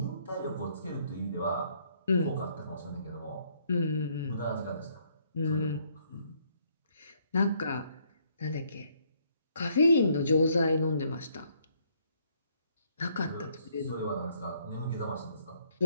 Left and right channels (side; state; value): both; inverted; correlation -0.68